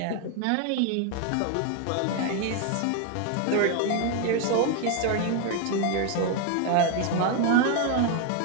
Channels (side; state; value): both; different; correlation 0.01